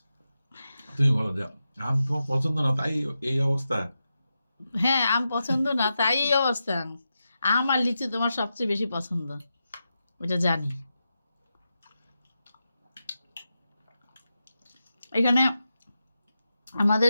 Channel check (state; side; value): inverted; both; correlation -0.89